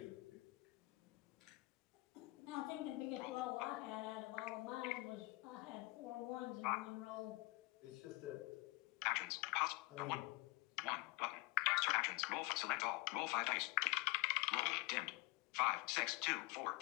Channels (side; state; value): right; quieter; 23.3 dB